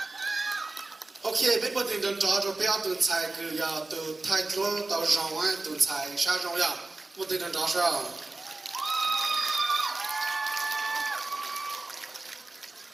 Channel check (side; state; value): left; quieter; 3.3 dB